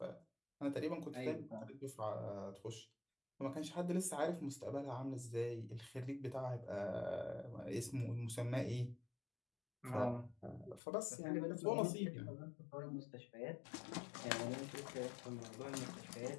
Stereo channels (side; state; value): right; drops out; at 10.8 s